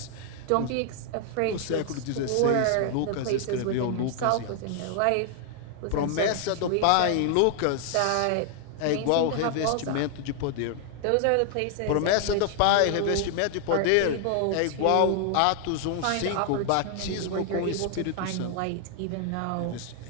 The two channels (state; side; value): different; both; correlation 0.00